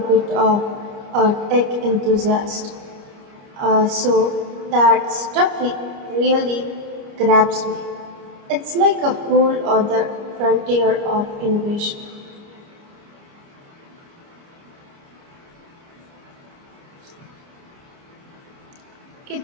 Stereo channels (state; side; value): late; left; 29 ms